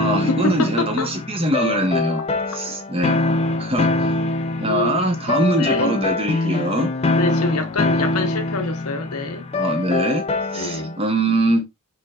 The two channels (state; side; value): normal; both; correlation 0.39